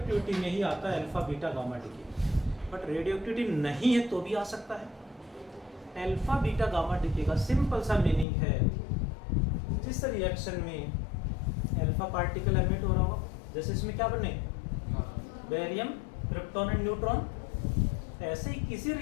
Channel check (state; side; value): drops out; right; at 8.2 s